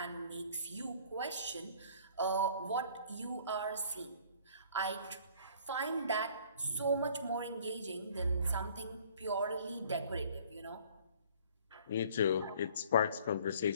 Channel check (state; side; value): inverted; both; correlation -0.54